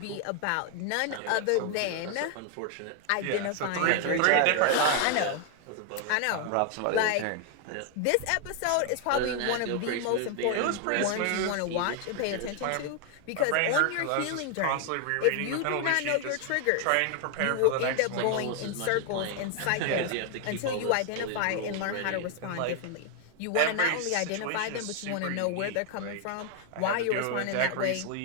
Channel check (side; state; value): both; different; correlation 0.00